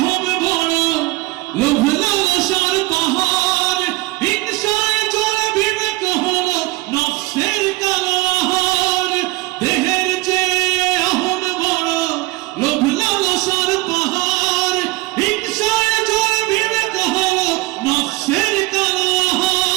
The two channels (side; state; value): left; quieter; 21.2 dB